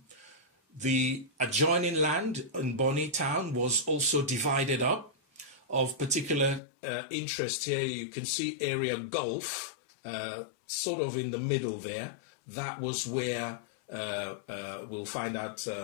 The adjoining land in Bonny town was also divided up. Of particular interest here, you can see area Gulf, sort of in the middle there. That was where we'll find out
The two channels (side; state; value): right; drops out; at 6.6 s